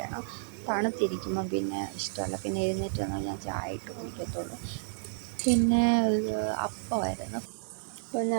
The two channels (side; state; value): left; silent; digital silence